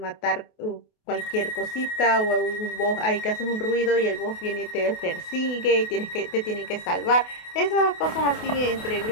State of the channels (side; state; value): right; late; 28 ms